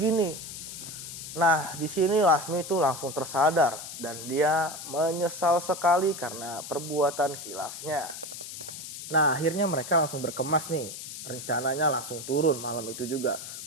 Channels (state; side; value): noise; left; hiss, 10 dB below the sound